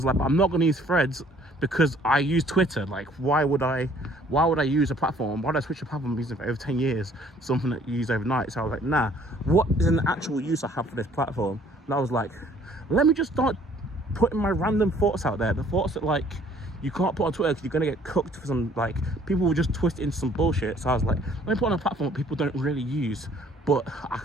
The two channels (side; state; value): both; normal; correlation 0.58